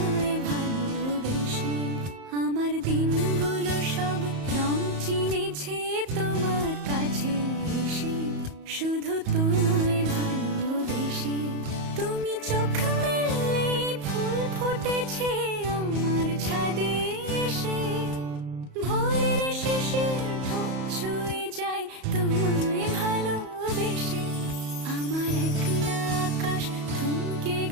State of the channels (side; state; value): left; late; 34 ms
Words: ভালোবেসে। আমার দিনগুলো সব রং চিনেছে তোমার কাছে এসে, শুধু তোমায় ভালোবেসে। তুমি চোখ মেললে ফুল ফুটেছে আমার ছাদে এসে, ভোরের শিশির ঠোঁট ছুঁয়ে যায় তোমায় ভালোবেসে। আমার একলা আকাশ থমকে